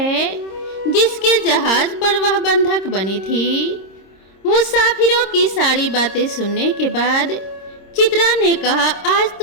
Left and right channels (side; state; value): right; late; 26 ms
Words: जिसके जहाज पर वह बंधक बनी थी। मुसाफिरों की सारी बातें सुनने के बाद चित्रा ने कहा, आज